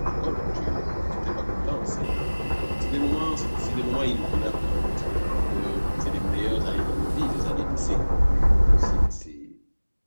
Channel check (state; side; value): inverted; both; correlation -1.00